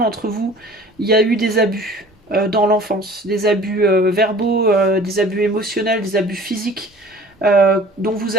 vous, il y a eu des abus dans l'enfance. Des abus verbaux, des abus émotionnels, des abus physiques. Dont vous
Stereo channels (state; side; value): normal; both; correlation 0.47